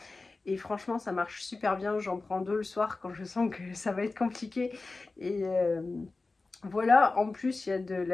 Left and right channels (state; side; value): quieter; right; 3.6 dB